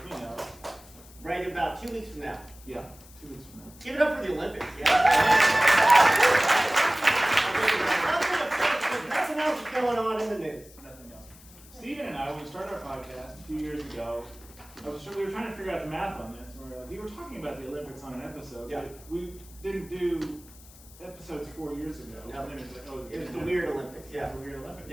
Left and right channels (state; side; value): noise; left; hiss, 22 dB below the sound